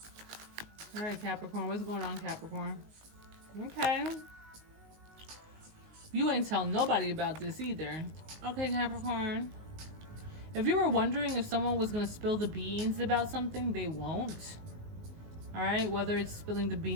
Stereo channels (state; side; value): late; left; 19 ms